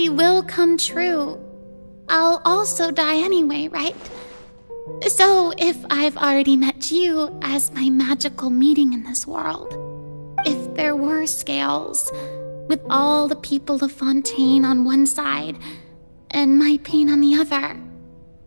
will come true, I'll also die anyway, right? So if I've already met you as my magical meeting in this world, if there were scales, with all the people of Fontaine on one side and my pain on the other,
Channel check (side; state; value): both; inverted; correlation -1.00